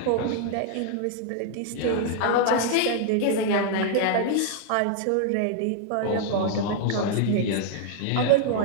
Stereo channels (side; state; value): both; different; correlation 0.00